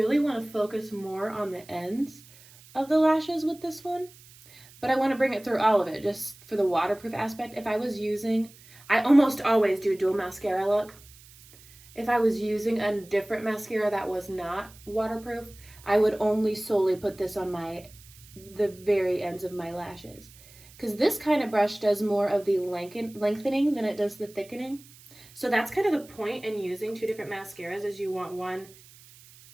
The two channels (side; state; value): right; noise; hiss, 23 dB below the sound